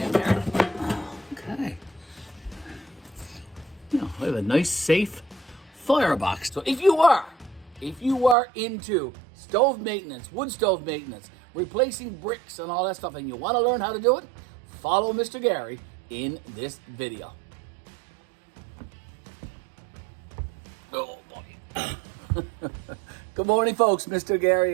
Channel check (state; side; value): drops out; left; at 8.3 s